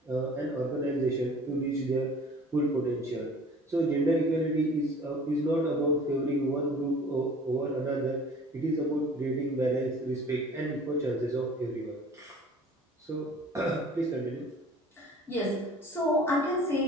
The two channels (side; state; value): both; normal; correlation 0.47